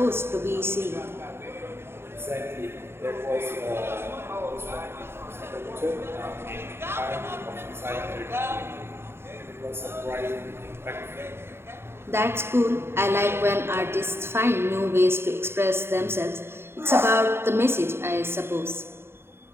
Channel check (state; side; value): late; left; 0.11 ms